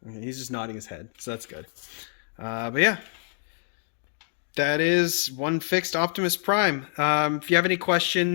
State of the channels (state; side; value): silent; right; digital silence